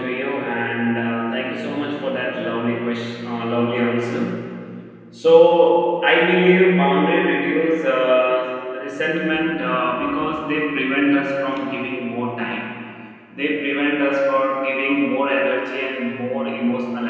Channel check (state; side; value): identical; both; correlation 1.00